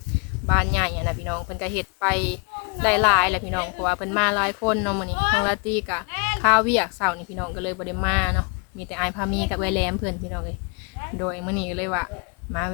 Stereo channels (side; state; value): right; quieter; 33.6 dB